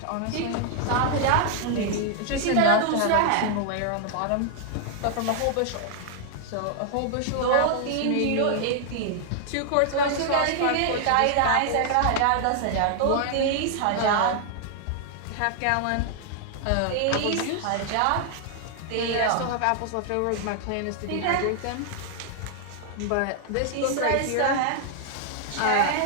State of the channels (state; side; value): different; both; correlation 0.00